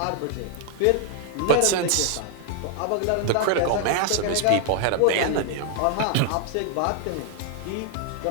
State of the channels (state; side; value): different; both; correlation 0.00